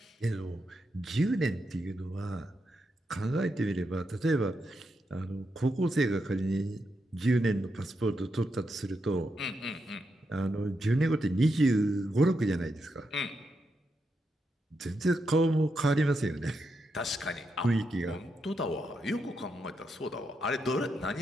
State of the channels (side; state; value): both; normal; correlation 0.84